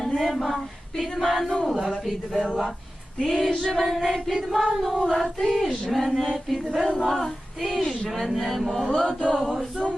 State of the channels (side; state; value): both; normal; correlation 0.94